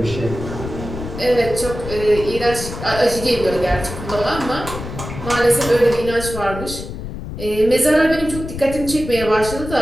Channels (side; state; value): left; noise; rumble, 9 dB below the sound